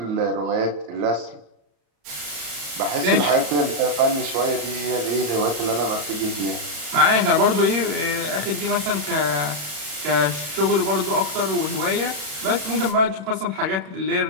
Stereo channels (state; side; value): late; left; 34 ms